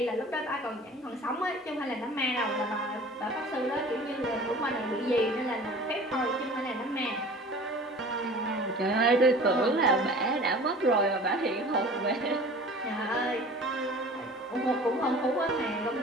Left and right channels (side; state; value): both; normal; correlation 0.43